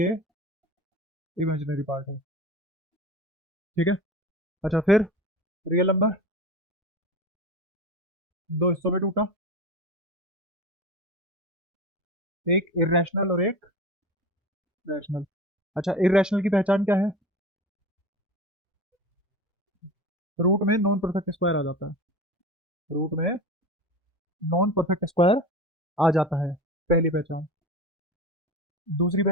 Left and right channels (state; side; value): normal; both; correlation 0.31